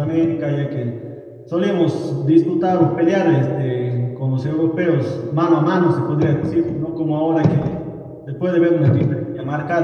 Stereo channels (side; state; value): both; identical; correlation 1.00